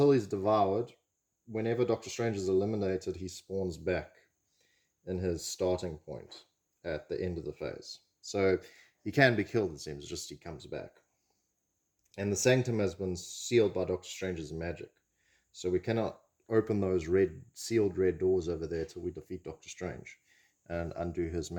he's devoured, whenever Doctor Strange is eliminated, he spawns back in his starting point at the end of the phase. So he can be killed, it seems, just he comes back. And the Sanctum has been sealed by Doctor Strange's magic. So we cannot open those sealed red doors over there till we defeat Doctor Strange and undo his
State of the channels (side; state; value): both; identical; correlation 1.00